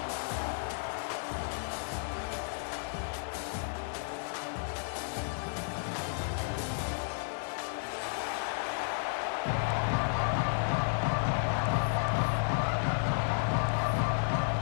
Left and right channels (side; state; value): right; silent; digital silence